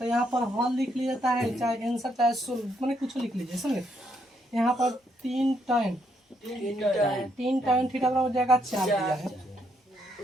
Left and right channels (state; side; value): normal; both; correlation 0.74